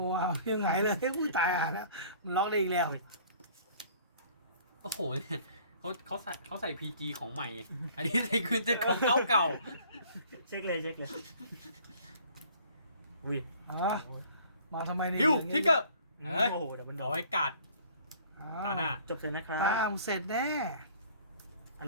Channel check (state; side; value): inverted; both; correlation -0.53